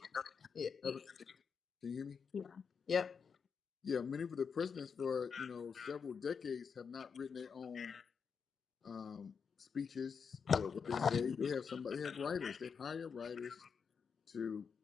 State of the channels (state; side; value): quieter; right; 6.1 dB